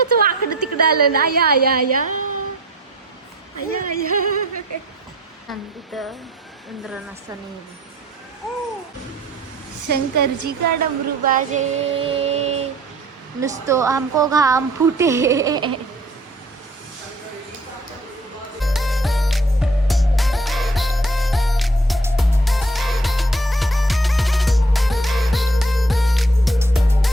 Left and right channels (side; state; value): both; normal; correlation 0.55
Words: कसं वाकडं तिकडं आलं ना. या या या या या. तिथं इंद्र नसताना शंकरजी का डमरू बाजे नुसतो हमको घाम फुटे.